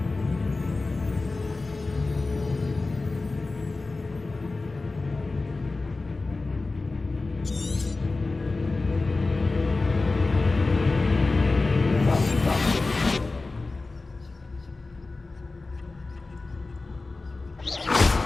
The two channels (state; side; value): quieter; right; 3.5 dB